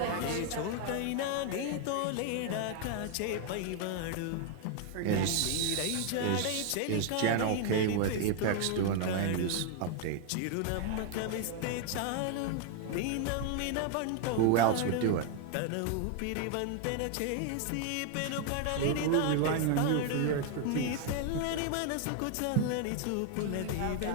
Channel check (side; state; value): both; different; correlation 0.00